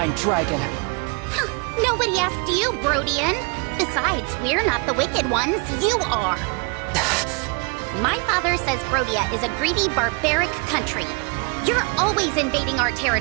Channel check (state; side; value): quieter; left; 32.6 dB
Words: Dragon. Huh, nobody asked you, Brodian. Besides, we're not the wicked ones, you are. My father says Brodia is a greedy, barbaric country. You're always invading our